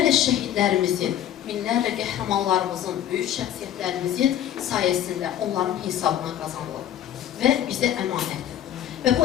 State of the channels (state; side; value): quieter; right; 11.0 dB